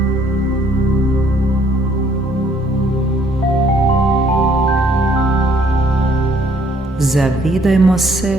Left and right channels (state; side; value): normal; both; correlation 0.63